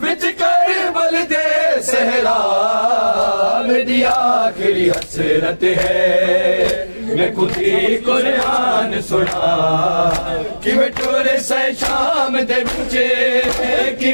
وچ کربل دے صحرا میری آخری حسرت ہے میں خود ہی قرآن سنا کیویں ٹورے سے شام دے وچے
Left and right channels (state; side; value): inverted; both; correlation -1.00